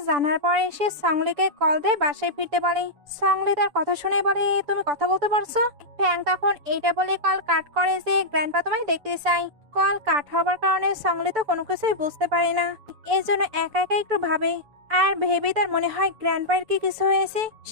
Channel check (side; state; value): left; late; 6.9 ms